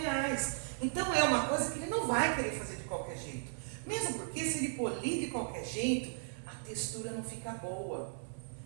Então é uma coisa que ele não vai querer fazer de qualquer jeito. Mesmo porque se ele polir de qualquer jeito, a textura não fica boa.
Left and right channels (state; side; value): silent; left; digital silence